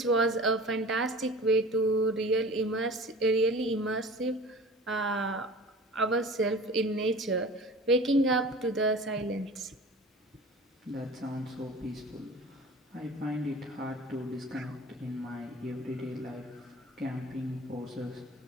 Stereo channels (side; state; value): both; normal; correlation 0.40